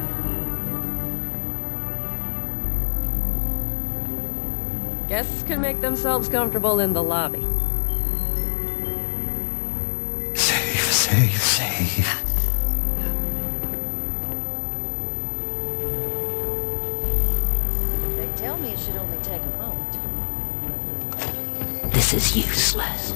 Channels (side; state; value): right; silent; digital silence